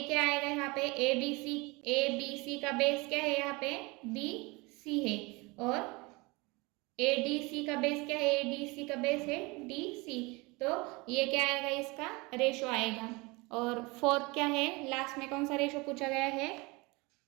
क्या आएगा यहाँ पे? ए बी सी का बेस क्या है? यहाँ पे बी सी है और ए डी सी का बेस क्या है? ए डी सी का बेस है डी सी। तो ये क्या आएगा? इसका रेशो आएगा। और फोर्थ क्या है? लास्ट में कौन सा रेशो पूछा गया है?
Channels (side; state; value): left; quieter; 25.5 dB